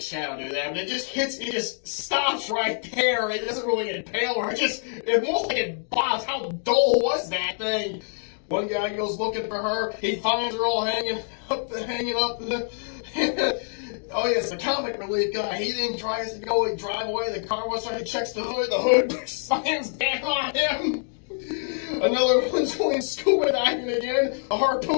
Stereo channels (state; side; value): silent; right; 59 dB below the other